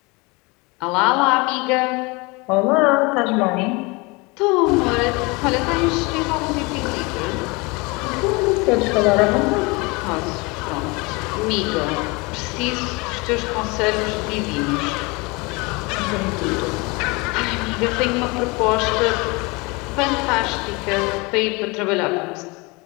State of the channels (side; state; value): right; quieter; 26.5 dB